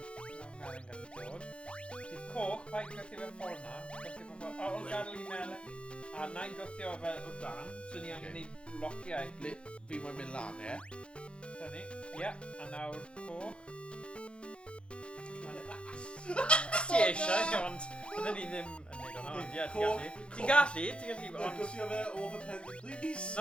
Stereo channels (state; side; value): late; right; 0.057 ms